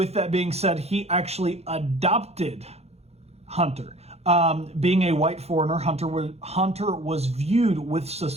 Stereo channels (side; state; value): left; late; 0.31 ms